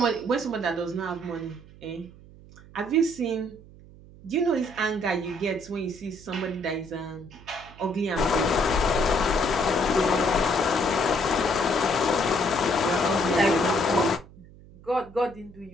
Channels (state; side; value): noise; right; hum, 21 dB below the sound